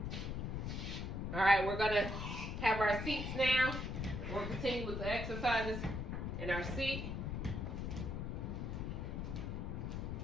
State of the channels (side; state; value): left; noise; rumble, 3 dB below the sound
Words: All right, we're gonna have our seats now. We'll continue with the exercises in our seat.